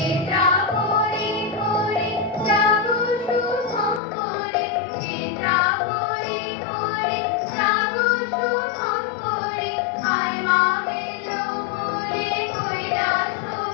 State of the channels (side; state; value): right; drops out; at 4.0 s